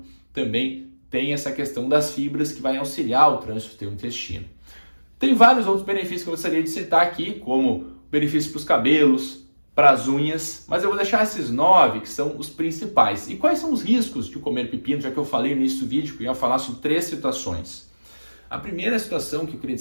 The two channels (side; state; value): both; inverted; correlation -1.00